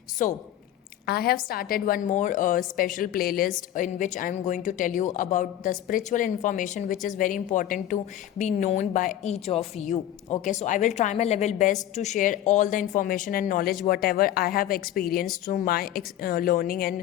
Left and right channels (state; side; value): quieter; right; 12.0 dB